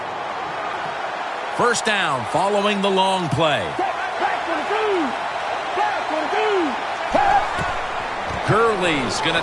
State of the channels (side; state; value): both; identical; correlation 1.00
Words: First down following the long play. Gurley's going to